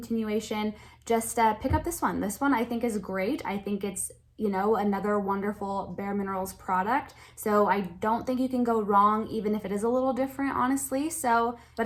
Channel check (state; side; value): identical; both; correlation 1.00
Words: just pick up this one. This one I think is great. I think it's, you know, another wonderful bareMinerals product. So I don't think you can go wrong, even if it is a little different, honestly. So,